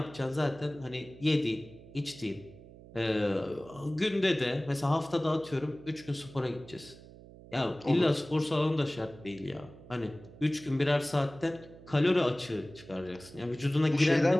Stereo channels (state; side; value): noise; right; hum, 19 dB below the sound